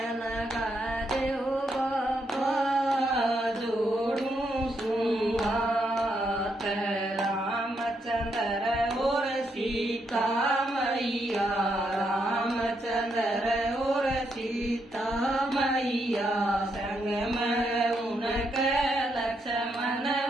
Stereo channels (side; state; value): both; normal; correlation 0.79